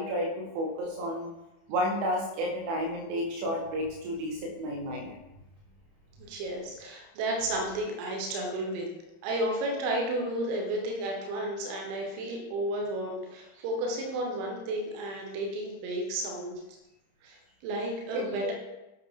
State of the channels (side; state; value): left; late; 30 ms